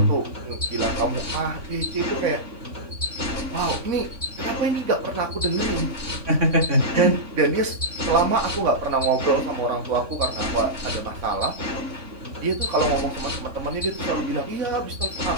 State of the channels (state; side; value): late; left; 3.5 ms